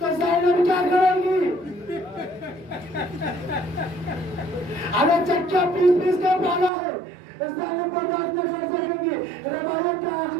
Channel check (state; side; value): drops out; left; at 6.7 s